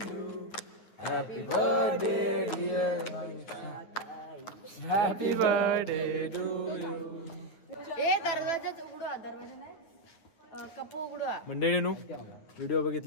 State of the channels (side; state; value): right; late; 9.4 ms